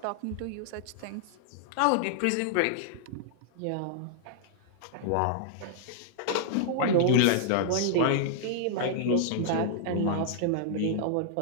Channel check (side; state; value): both; different; correlation -0.01